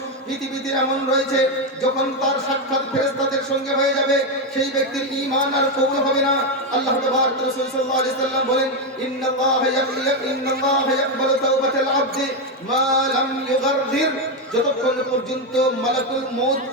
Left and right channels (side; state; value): both; normal; correlation 0.07